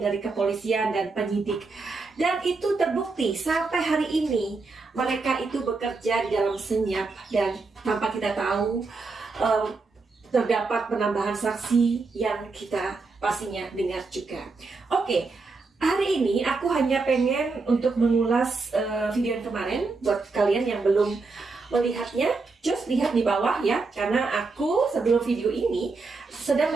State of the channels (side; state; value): left; quieter; 4.0 dB